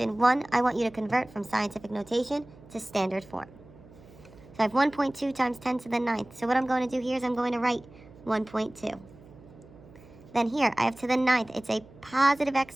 1, I want you to convert from scientific notation to standard form. So I have 1.2 times 10 to the 9th. So what I'm going to do here is I'm going to write 1.2. Then here, I have to the 9th. It's a positive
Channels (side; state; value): right; noise; hum, 22 dB below the sound